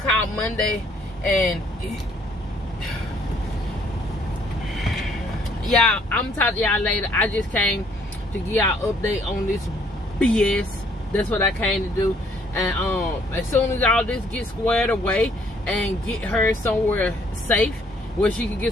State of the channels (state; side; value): normal; both; correlation 0.64